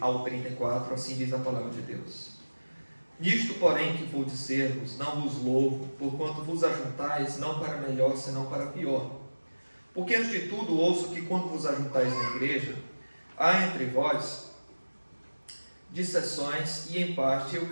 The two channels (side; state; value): both; inverted; correlation -1.00